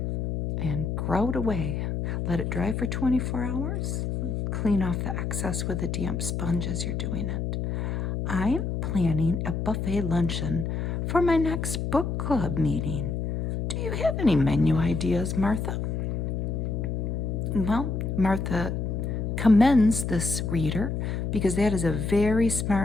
And grout away. Let it dry for 24 hours. Clean off the excess with a damp sponge as you're doing it. I'm planning a buffet luncheon for my next book club meeting. Do you have any menu ideas, Martha? Well, Martha commends this reader because that is a very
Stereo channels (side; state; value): left; noise; hum, 2 dB below the sound